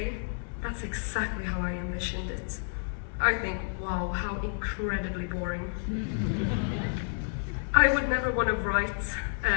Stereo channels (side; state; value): right; silent; 58 dB below the other